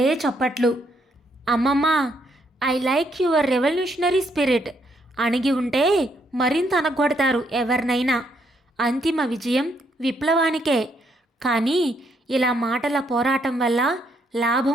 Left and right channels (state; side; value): normal; both; correlation 0.73